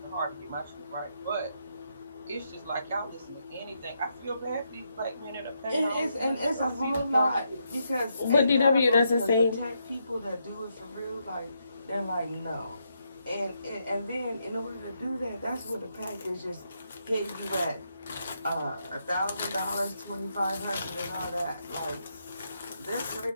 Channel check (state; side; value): inverted; both; correlation -0.80